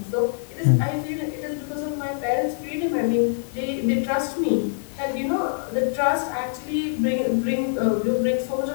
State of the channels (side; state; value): right; silent; digital silence